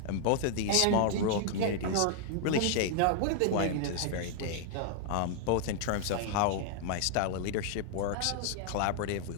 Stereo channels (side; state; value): both; different; correlation 0.00